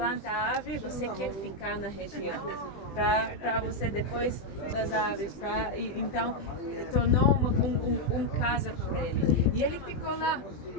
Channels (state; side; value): late; right; 20 ms